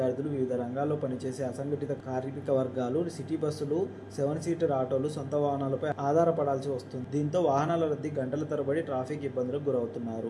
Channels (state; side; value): identical; both; correlation 1.00